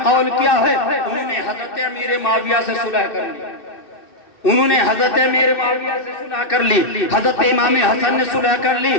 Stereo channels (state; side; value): late; right; 2.6 ms